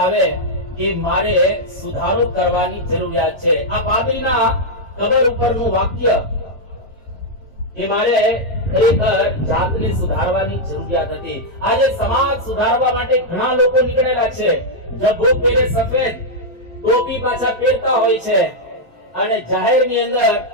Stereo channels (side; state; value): both; normal; correlation -0.03